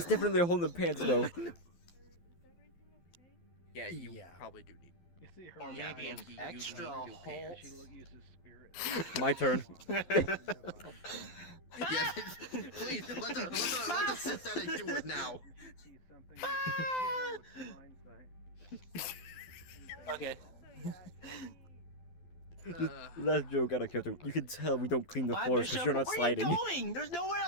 definitely a hole in the pants though. Yeah, you probably do need. You see her Or maybe an extra hole. She uses spirit. My turn. Yeah, please let the synthetic do it now. Okay. Last joke out of character. You can tell we don't clean the Bye, floors because Bishop. you're not Where sliding. are you going? There's nowhere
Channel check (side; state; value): right; late; 12 ms